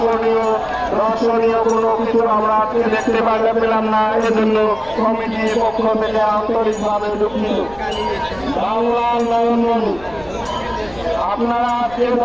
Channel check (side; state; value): left; noise; rumble, 21 dB below the sound